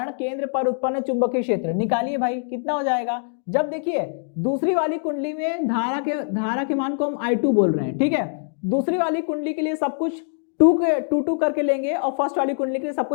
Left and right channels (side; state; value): right; silent; digital silence